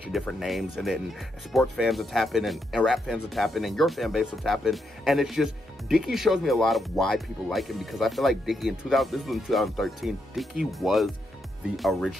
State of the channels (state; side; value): normal; both; correlation 0.80